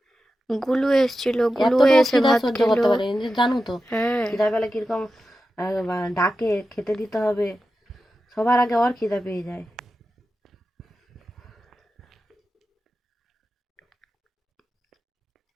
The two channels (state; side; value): normal; both; correlation 0.92